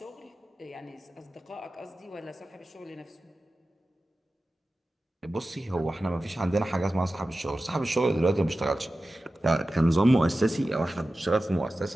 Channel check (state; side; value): normal; both; correlation 0.95